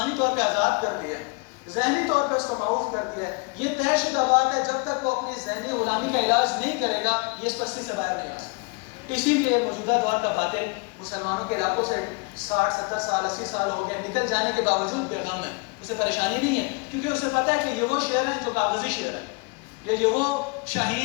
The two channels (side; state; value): right; quieter; 30.8 dB